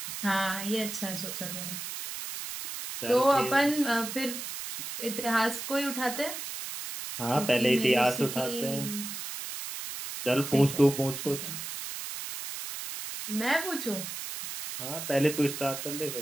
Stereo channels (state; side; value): noise; right; hiss, 7 dB below the sound